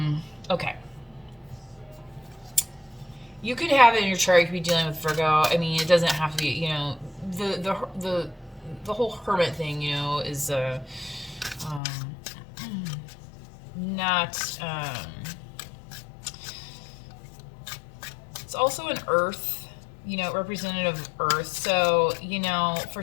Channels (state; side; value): drops out; right; at 11.8 s